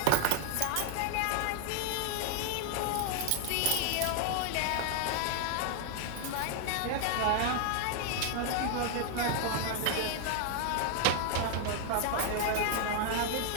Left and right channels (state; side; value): different; both; correlation 0.00